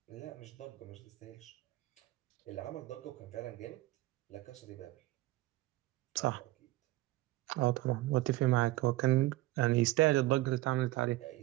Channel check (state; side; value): quieter; left; 18.0 dB